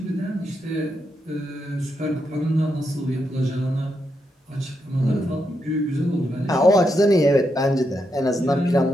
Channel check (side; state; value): both; normal; correlation 0.82